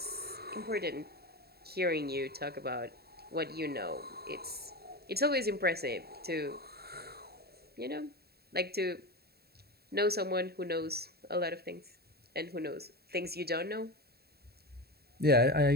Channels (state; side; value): late; left; 0.46 ms